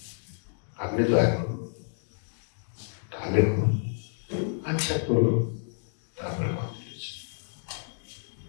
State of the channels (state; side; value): silent; right; digital silence